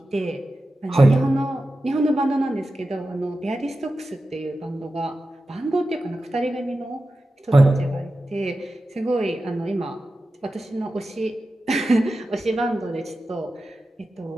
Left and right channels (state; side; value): normal; both; correlation 0.93